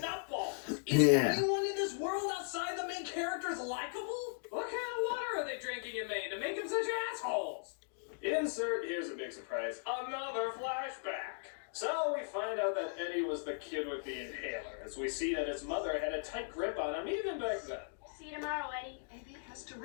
Is Yeah. anyone in this world outside the main characters likable? What kind of water are they drinking you made to make them such assholes? Insert, here's a big surprise, another flashback. So we find out that Eddie was the kid with the inhaler, as we see that his mother had a tight grip on him even back then. See you tomorrow, Eddie. Eddie has to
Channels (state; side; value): silent; right; digital silence